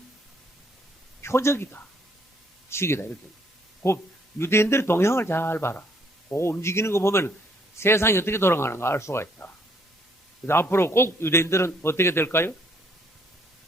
표적이다. 시계다. 이렇게. 그 유대인들의 동향을 잘 봐라. 그 움직이는 거 보면 세상이 어떻게 돌아가는가 알 수가 있다. 그래서 앞으로 꼭 유대인들은 어떻게 될까요?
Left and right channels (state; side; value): normal; both; correlation 0.67